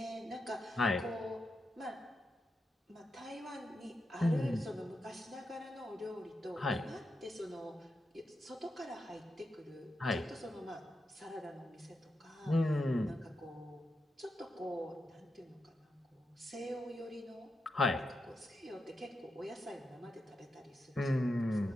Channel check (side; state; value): both; normal; correlation 0.86